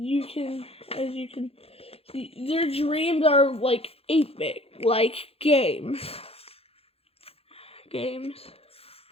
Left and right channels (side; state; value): right; late; 0.28 ms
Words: as you can see, their dreams are like 8-bit, like games.